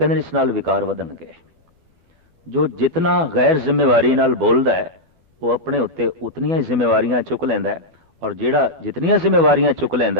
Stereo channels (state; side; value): late; left; 12 ms